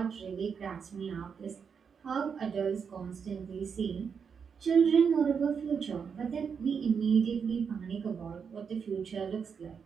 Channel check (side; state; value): left; quieter; 6.4 dB